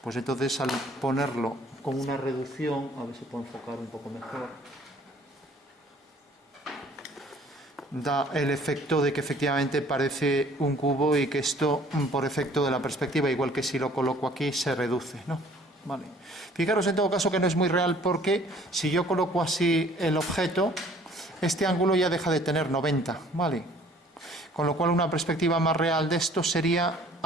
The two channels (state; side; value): normal; both; correlation 0.55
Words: pues entonces al ponerlo con una reducción, a ver si puedo enfocar un poco mejor, da el efecto de que efectivamente parece un cubo y que esto, por efecto de la perspectiva, igual que si lo coloco aquí, se reduce, ¿no? Vale. Fijaros en todo caso que no es muy real porque si yo coloco así el objeto, este ángulo ya deja de tener 90, ¿vale? Con lo cual una perspectiva más real de esto sería